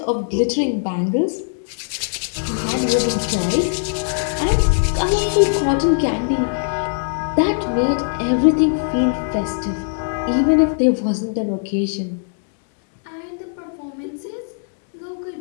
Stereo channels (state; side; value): silent; right; digital silence